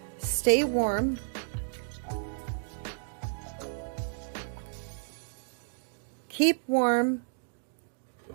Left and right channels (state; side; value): silent; left; digital silence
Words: Stay warm. Keep warm.